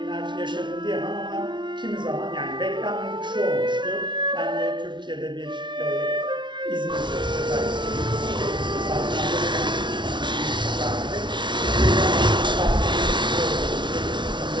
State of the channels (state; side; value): late; left; 0.23 ms